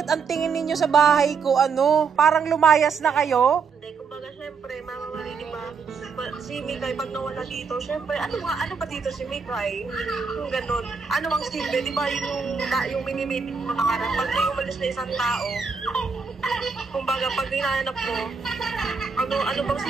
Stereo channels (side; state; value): left; quieter; 5.4 dB